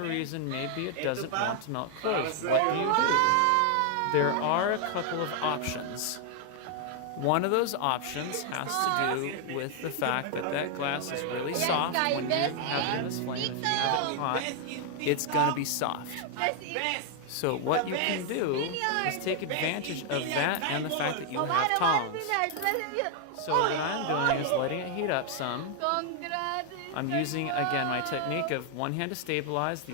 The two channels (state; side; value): different; both; correlation 0.00